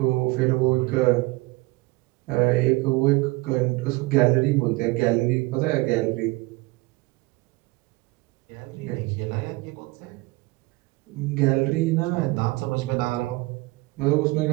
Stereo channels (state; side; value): quieter; left; 22.8 dB